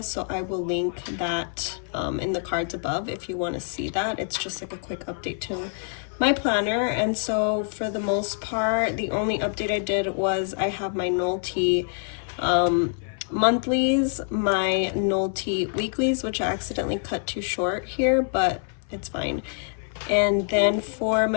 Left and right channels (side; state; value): right; silent; 57 dB below the other